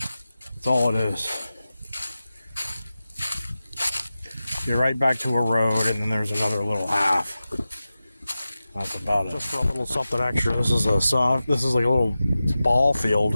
That's all it is. You're right back to a road, and then there's another little half. That's about it. Just for a little something extra, this is like a little ball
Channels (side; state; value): both; inverted; correlation -0.94